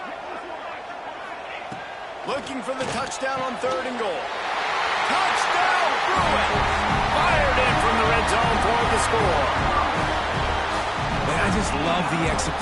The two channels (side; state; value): both; identical; correlation 1.00